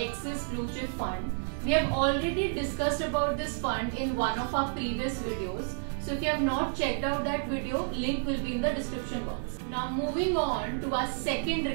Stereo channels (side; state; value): left; silent; 58 dB below the other